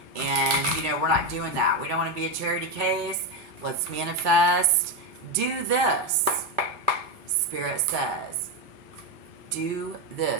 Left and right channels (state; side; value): normal; both; correlation 0.09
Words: And, we're not doing that. We don't want to be a charity case. Let's manifest. Do this. Spirit says, do